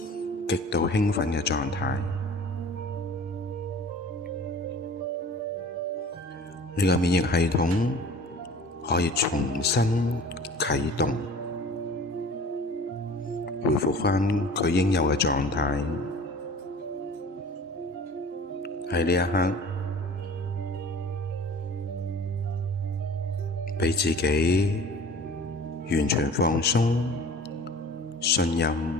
極度興奮嘅狀態。你嘅免疫系統可以重新啟動，恢復返佢應有嘅狀態。喺呢一刻，畀自己完全放鬆，信任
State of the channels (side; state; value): both; normal; correlation 0.44